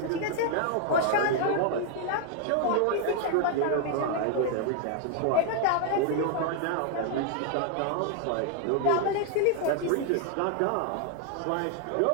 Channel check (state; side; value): different; both; correlation 0.00